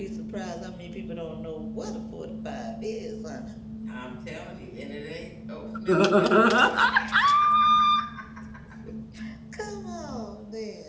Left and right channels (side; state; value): both; identical; correlation 1.00